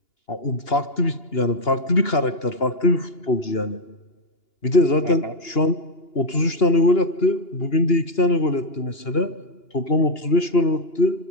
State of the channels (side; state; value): right; late; 2.9 ms